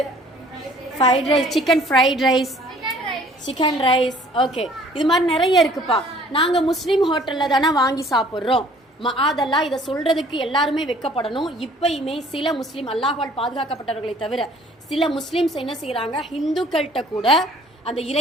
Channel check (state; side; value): normal; both; correlation 0.55